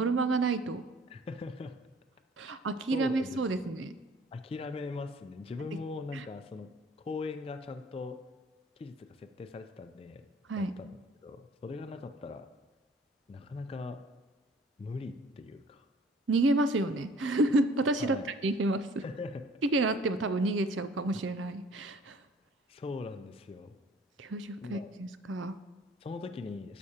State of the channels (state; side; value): normal; both; correlation 0.53